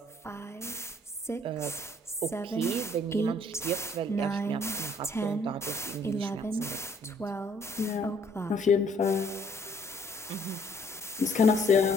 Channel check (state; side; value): normal; both; correlation 0.62